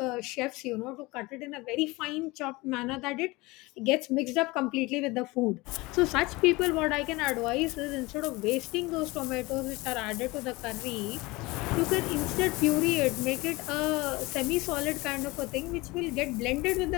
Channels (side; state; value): right; quieter; 22.5 dB